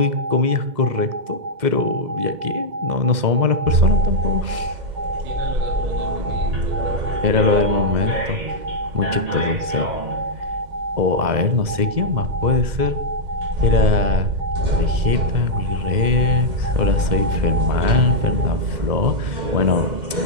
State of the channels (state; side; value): late; left; 2.0 ms